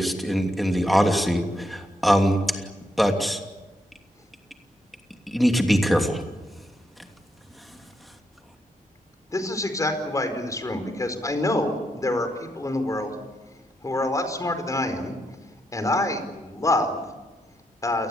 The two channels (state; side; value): normal; both; correlation 0.80